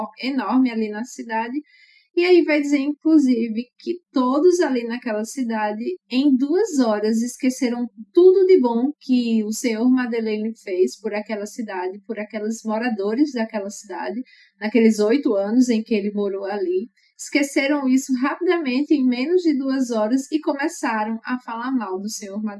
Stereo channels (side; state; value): both; identical; correlation 1.00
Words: enorme ali na cidade, e aí vai dizer, inclusive, que todos ali naquela cidade, em 2 horas, esqueceram tudo de bom que o senhor Madeleine fez por aquela cidade, por aqueles moradores daquela cidade, naqueles 8 anos em que ele morou ali. Esqueceram isso rapidamente, em menos de 2 horas, e começaram a falar mal do senhor